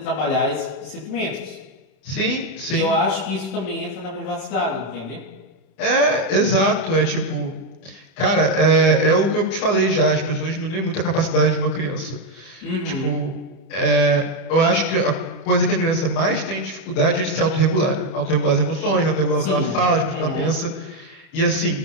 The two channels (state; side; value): late; right; 31 ms